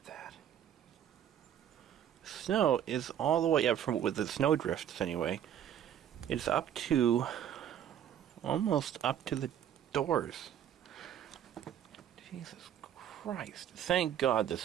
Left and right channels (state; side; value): quieter; left; 10.0 dB